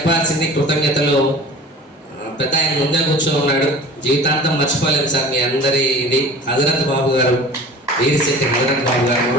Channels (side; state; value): both; normal; correlation 0.41